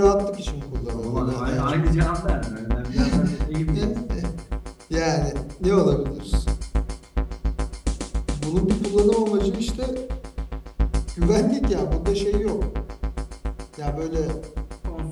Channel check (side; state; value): both; identical; correlation 1.00